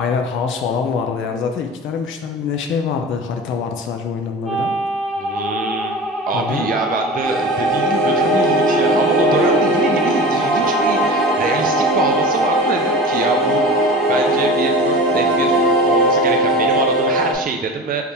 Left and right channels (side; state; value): both; normal; correlation 0.33